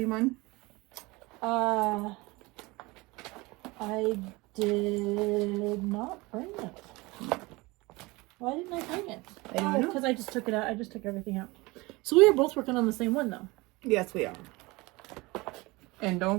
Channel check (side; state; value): left; quieter; 23.2 dB